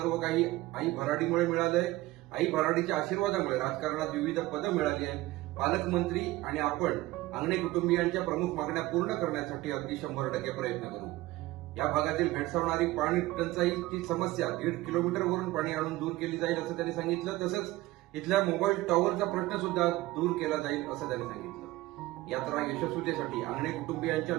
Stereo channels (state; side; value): quieter; left; 18.3 dB